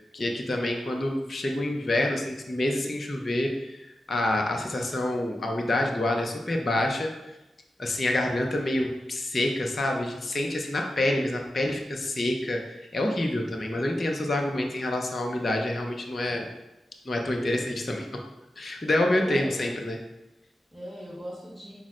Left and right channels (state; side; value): normal; both; correlation 0.90